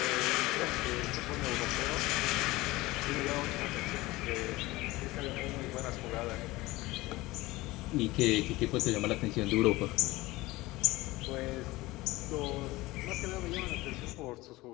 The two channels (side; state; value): right; quieter; 19.8 dB